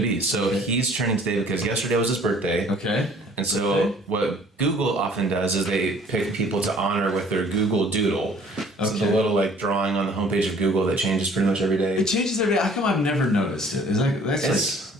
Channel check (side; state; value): both; normal; correlation 0.54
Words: be. So he's trending today because yesterday was his birthday. Okay. And so what Google often does is they pick people to honor with their Google Doodle. So it's a little like drawing on the homepage of Google that changes pretty much every day. It changes every day. How come I've never noticed it? That's like